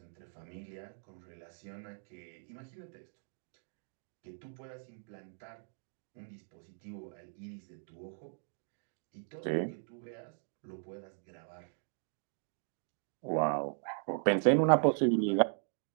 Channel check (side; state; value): left; silent; digital silence